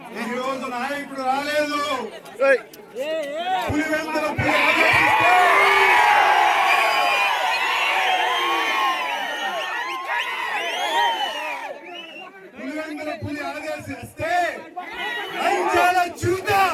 ఈ రోజు నాయకుడు రాలేదు. పులివెందుల పులి ఆదేశిస్తే చూద్దాం.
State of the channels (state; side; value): identical; both; correlation 1.00